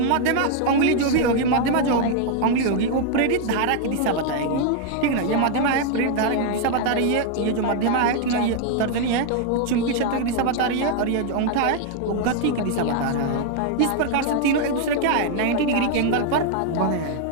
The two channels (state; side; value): different; both; correlation 0.00